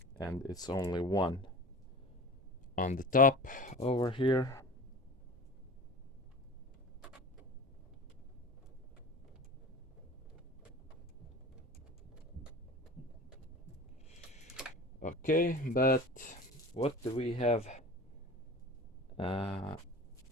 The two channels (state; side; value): normal; both; correlation 0.35